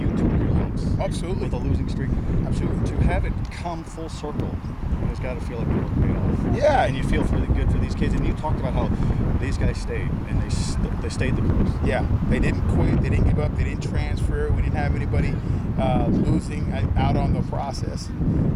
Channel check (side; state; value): both; identical; correlation 1.00